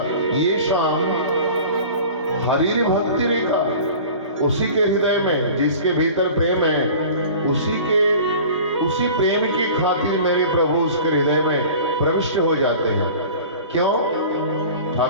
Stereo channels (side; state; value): both; inverted; correlation -0.41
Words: ये शाम हरि भक्ति रेखा। उसी के हृदय में जिसके भीतर प्रेम है, उसी प्रेम की खातिर मेरे प्रभु उसके हृदय में प्रविष्ट हो जाते हैं। क्यों?